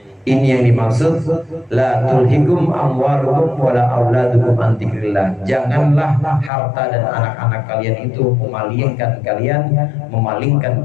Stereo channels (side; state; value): right; drops out; at 6.5 s